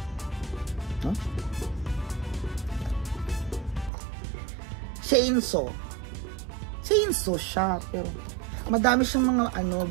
chainsaw. Chainsaw siya, pero madami siyang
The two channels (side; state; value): left; drops out; at 3.9 s